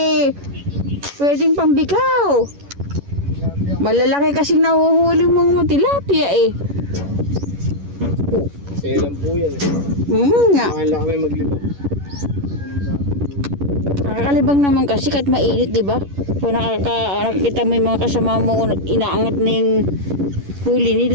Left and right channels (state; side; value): late; left; 11 ms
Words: pwedeng pambikaw. Malalaki kasing nahuhuli mong tilapia eh. Selan po yan eh. Nga. Mahal lang kami maglibang. Nakakalibang naman kasi kahit mainit, di ba? Kung nakakita mo yung mga kasama mo, inaangat na yung huli